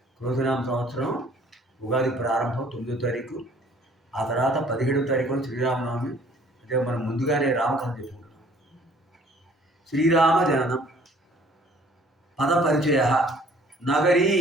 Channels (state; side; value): normal; both; correlation 0.56